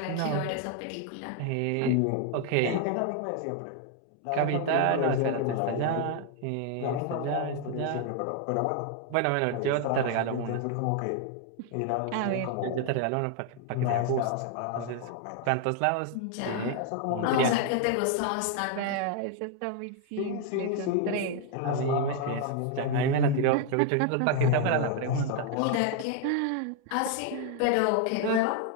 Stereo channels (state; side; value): different; both; correlation 0.00